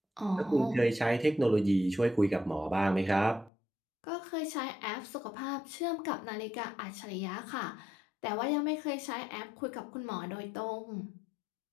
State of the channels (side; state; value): right; drops out; at 3.5 s